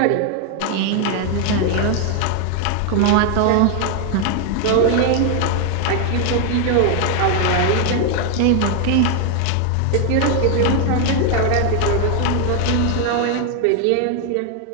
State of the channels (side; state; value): both; different; correlation 0.00